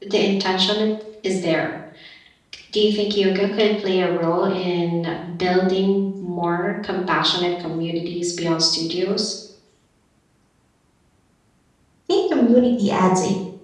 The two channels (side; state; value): both; identical; correlation 1.00